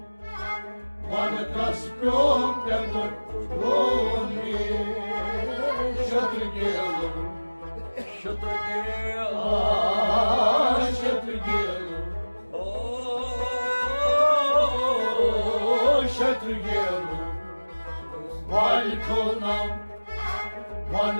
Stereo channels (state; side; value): inverted; both; correlation -1.00